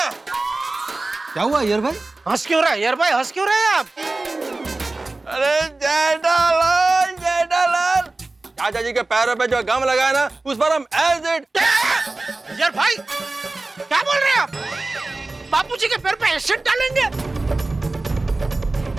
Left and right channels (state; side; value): quieter; left; 3.2 dB